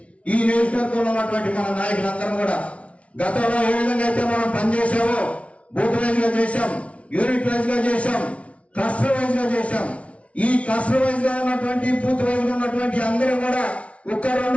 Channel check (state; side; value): late; right; 0.063 ms